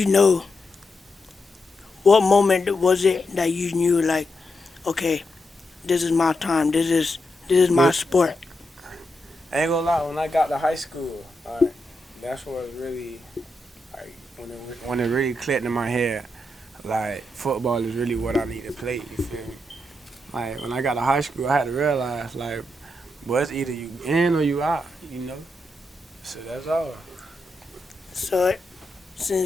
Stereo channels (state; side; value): normal; both; correlation 0.84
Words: know? What moment was it that you knew like, okay, this is my time. This is my sport. I ain't gonna lie, when I got to high school, like, that's what was really, like, when it really clicked in my head, like, football is really what I need to play, you feel me? Like, when I got to high school, I had to realize, like, boy, it's either you in or you out, you know? So that's all. So